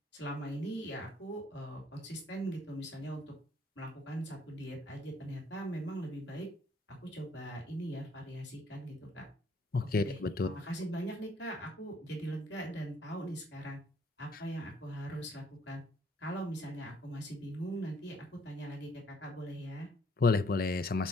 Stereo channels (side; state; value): both; normal; correlation 0.64